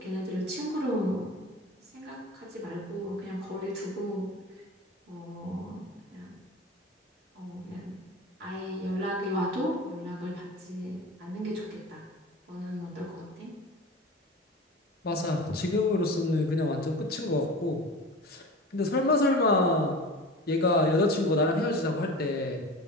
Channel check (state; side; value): normal; both; correlation 0.34